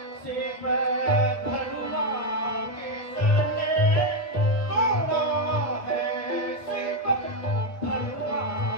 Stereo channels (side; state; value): right; late; 1.3 ms